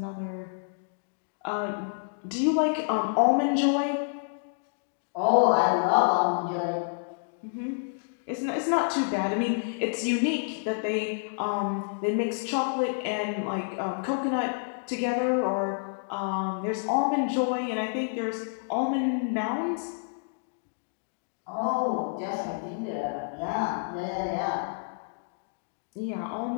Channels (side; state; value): right; silent; digital silence